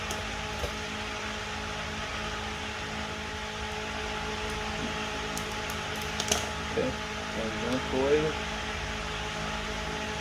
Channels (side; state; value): both; identical; correlation 1.00